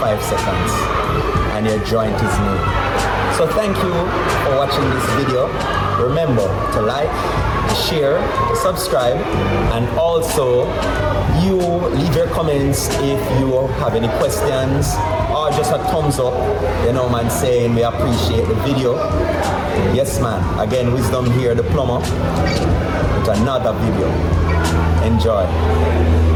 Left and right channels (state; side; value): identical; both; correlation 1.00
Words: seconds and your joint is made. So thank you for watching this video. Remember to like, share, subscribe, and also you leave your comments if you have any questions or just a thumbs up, you know man, saying we appreciate the video. Yes man, again, Wisdom here, the plumber, with another video. Enjoy.